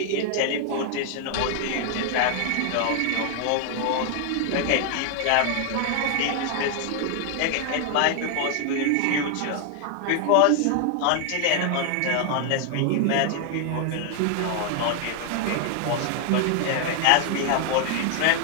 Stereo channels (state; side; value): different; both; correlation 0.00